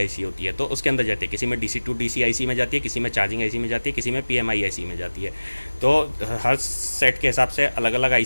होती है, तो उसके अंदर जाती है, किसी में DC टू DC IC में जाती है, किसी में चार्जिंग IC में जाती है, किसी में PMI IC में जाती है। तो हर सेट के हिसाब से अलग अलग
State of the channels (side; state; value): both; inverted; correlation -1.00